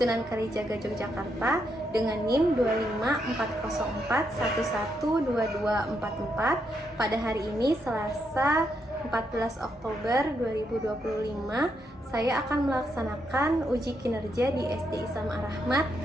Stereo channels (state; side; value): normal; both; correlation 0.79